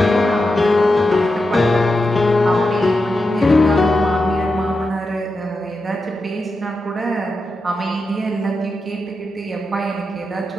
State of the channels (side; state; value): both; normal; correlation 0.88